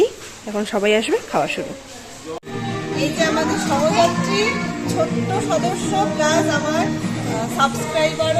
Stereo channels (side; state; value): both; identical; correlation 1.00